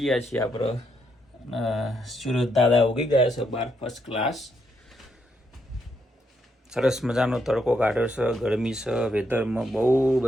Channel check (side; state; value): both; normal; correlation 0.77